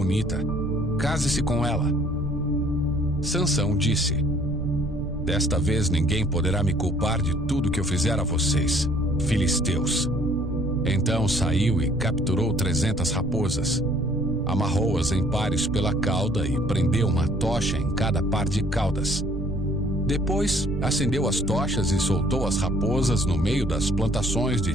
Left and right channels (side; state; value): right; noise; rumble, 10 dB below the sound